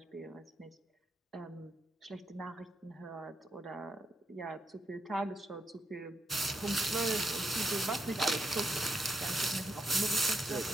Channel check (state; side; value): normal; both; correlation 0.79